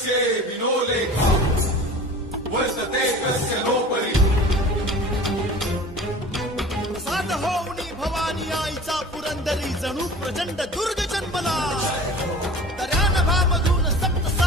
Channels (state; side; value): normal; both; correlation 0.40